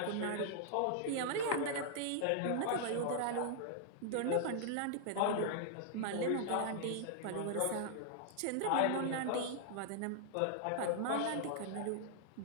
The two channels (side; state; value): both; different; correlation 0.00